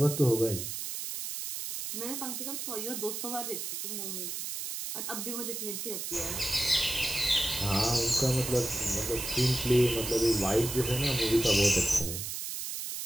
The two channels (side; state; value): right; noise; hiss, 5 dB below the sound